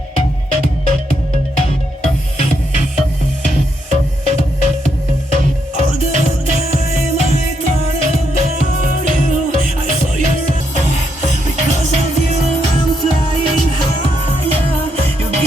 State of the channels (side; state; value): both; normal; correlation 0.78